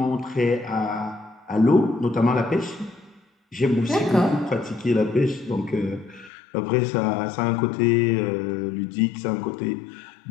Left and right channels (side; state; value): right; drops out; at 6.3 s